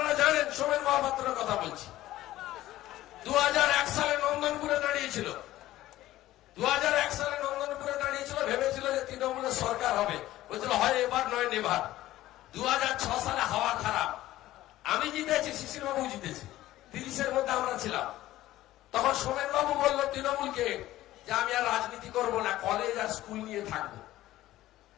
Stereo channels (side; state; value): right; quieter; 15.2 dB